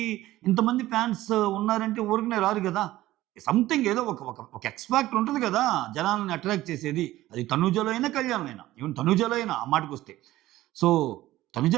ఇంతమంది ఫ్యాన్స్ ఉన్నారంటే ఊరికనే రారు గదా! సంథింగ్ ఏదో ఒక ఒక ఒక ఎక్స్ ఫ్యాక్టర్ ఉంటది గదా! జనాల్ని అట్రాక్ట్ చేసేది. అది తనూజలో అయినా, కళ్యాణ్‌లో అయినా. ఈవెన్ తనూజలో అయినా ఆ మాటకొస్తే. సో, తనుజ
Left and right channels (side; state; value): left; quieter; 15.9 dB